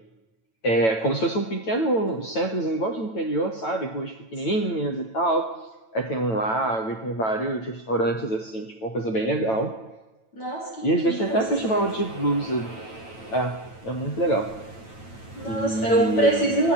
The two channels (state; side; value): late; right; 9.0 ms